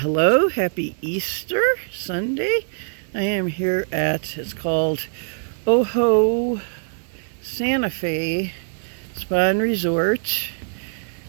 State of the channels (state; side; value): silent; left; digital silence